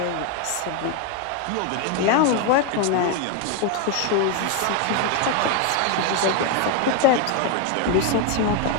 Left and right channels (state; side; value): different; both; correlation 0.01